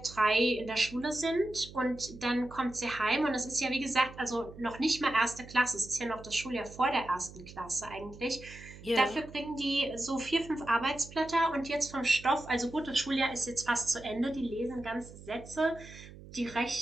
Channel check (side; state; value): right; noise; hum, 17 dB below the sound